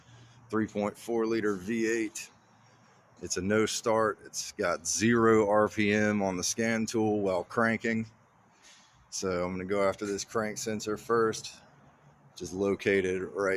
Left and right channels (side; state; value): both; identical; correlation 1.00